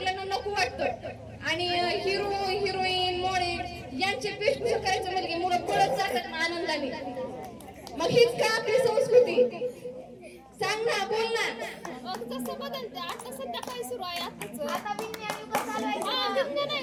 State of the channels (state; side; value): identical; both; correlation 1.00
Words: नको वाटतं. आणि हिरो हिरोईन मॉडेल यांचे वेशभूषा करायचं म्हणजे मुलं पळत जातात ना आनंदाने. मग हीच का आपली संस्कृती? सांग ना, बोल ना. जसं बदलते आता सध्या काय सुरू आहे आता विज्ञान युग चालू आहे. विज्ञान आहे